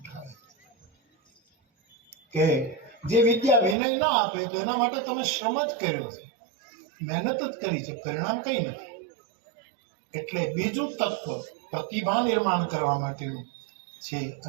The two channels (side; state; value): left; drops out; at 3.8 s